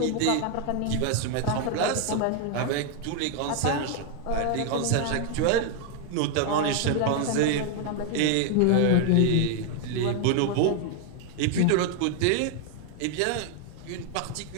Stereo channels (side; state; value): both; different; correlation 0.00